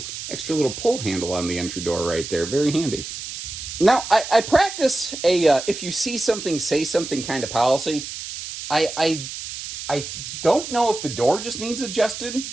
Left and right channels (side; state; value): right; noise; hiss, 9 dB below the sound